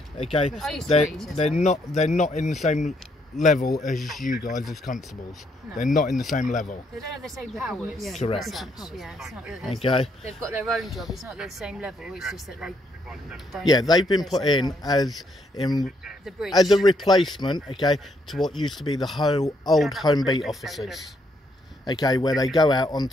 okay, I used to they're be PCSO. they're not in the same level as you guys as constables. No. They're not in the same level. They don't have the same powers. Yeah, Correct. as such. Yeah, it's not that there's- Okay. They've got their own job. It's not the same level. It's just that they don't. Yeah, they've been have put the same in powers. The bridge. as a replacement, okay, to what used to be the whole old home beat officers, okay, where they go out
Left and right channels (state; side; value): normal; both; correlation 0.73